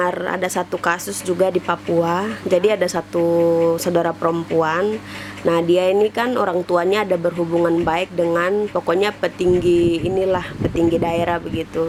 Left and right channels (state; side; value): identical; both; correlation 1.00